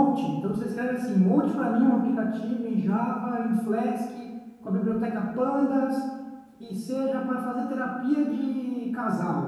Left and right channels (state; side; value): identical; both; correlation 1.00